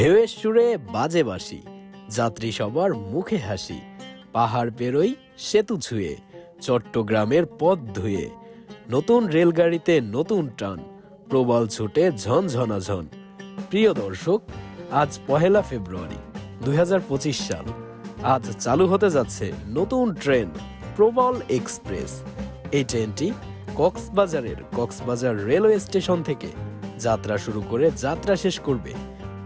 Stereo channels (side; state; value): both; identical; correlation 1.00